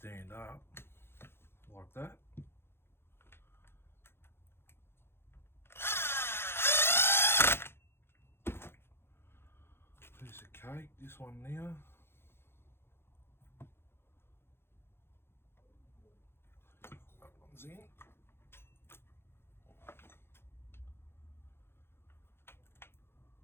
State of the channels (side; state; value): right; late; 0.11 ms